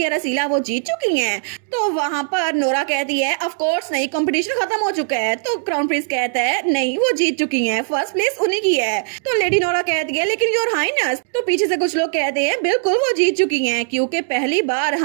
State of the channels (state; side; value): silent; left; digital silence